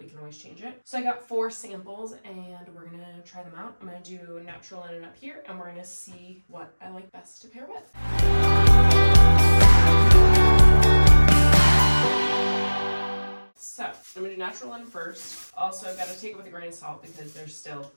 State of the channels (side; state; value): both; inverted; correlation -1.00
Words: can always change it. So I got 4 samples and we're gonna try them out. I'm gonna do natural linen up here and we're gonna see what I like best to pair with. So I'm gonna do natural linen first. Also gotta take it with a grain of salt because there's still